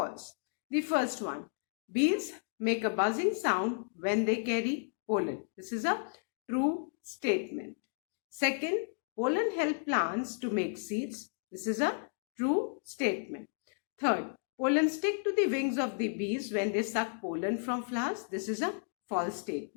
The first one, bees make a buzzing sound when they carry pollen. This is a true statement. Second, pollen help plants to make seeds. This is a true statement. Third, pollen stick to the wings of the bees when they suck pollen from flowers. This is a false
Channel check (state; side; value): silent; right; digital silence